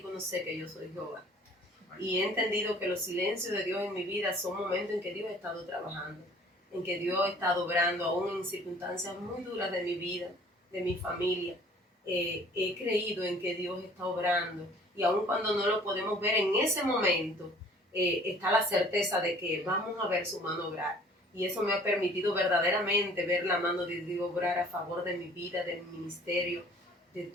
conoce que yo soy Jehová. Y he entendido que los silencios de Dios en mi vida son momentos en que Dios ha estado trabajando, en que Dios ha estado obrando, aún en circunstancias muy duras de mi vida, de mi familia. He creído en que Dios está obrando, y aun cuando no lo podemos ver en ese momento, está la certeza de que vamos a ver su mano obrar. Y eso me ha permitido verdaderamente ver la mano de Dios obrar a favor de mi vida, de mi ministerio, de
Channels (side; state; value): both; normal; correlation 0.52